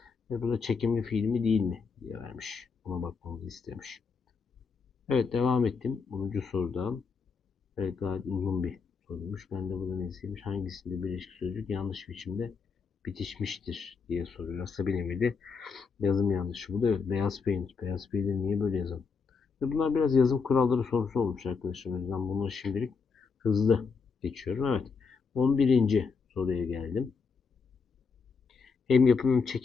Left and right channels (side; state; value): right; quieter; 5.2 dB